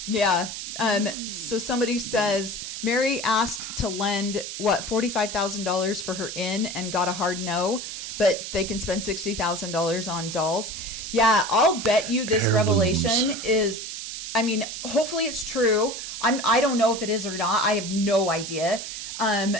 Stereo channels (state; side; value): noise; right; hiss, 7 dB below the sound